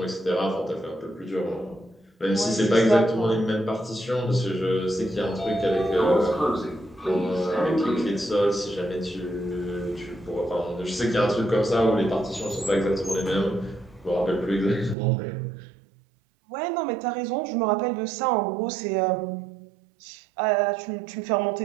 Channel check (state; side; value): drops out; left; at 15.0 s